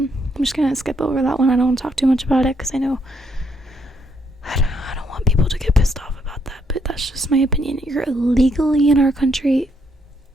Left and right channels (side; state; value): both; normal; correlation 0.73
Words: just gonna skip over that one. I don't want to talk too much about it because I know I don't want people to get pissed off about that, but that's just my opinion. You're illegally in our country.